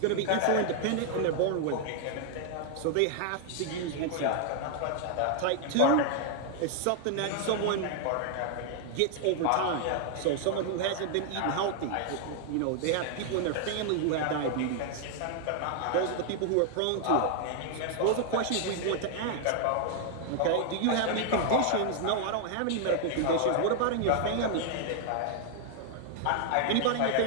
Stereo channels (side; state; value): both; different; correlation 0.00